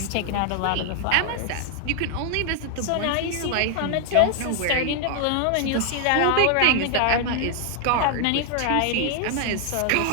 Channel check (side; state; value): both; different; correlation 0.00